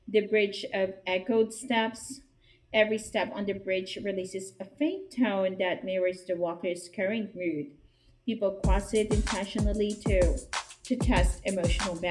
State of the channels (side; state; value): both; identical; correlation 1.00